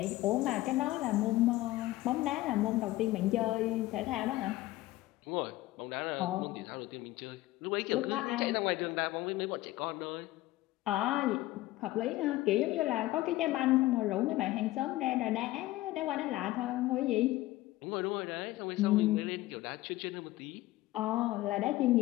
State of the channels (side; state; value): right; quieter; 17.3 dB